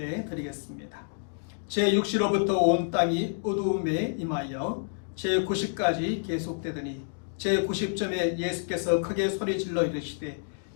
드리겠습니다. 제6시로부터 온 땅이 어두움에 임하여 제90까지 계속되더니 제90점에 예수께서 크게 소리질러 이르시되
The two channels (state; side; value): silent; right; digital silence